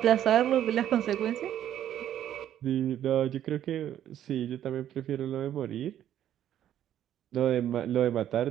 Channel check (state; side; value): quieter; left; 11.1 dB